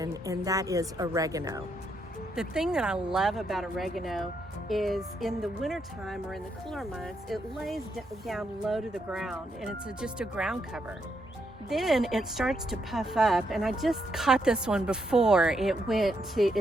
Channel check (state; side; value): normal; both; correlation 0.78